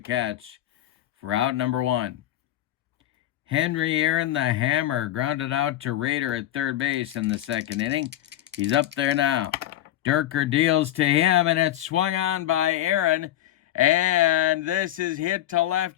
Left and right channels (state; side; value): quieter; right; 13.1 dB